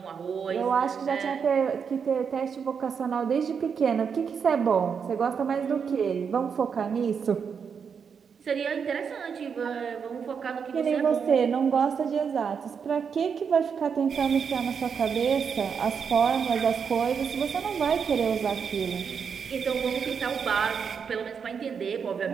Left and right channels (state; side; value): quieter; left; 6.5 dB